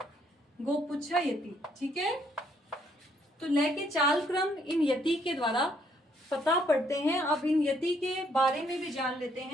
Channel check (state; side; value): normal; both; correlation 0.69